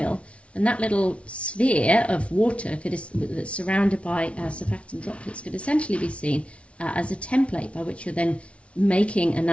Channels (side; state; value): right; late; 0.062 ms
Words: and that little sphere of water that's surrounded by surfactant droplets could essentially be seen as a template by which you're then making a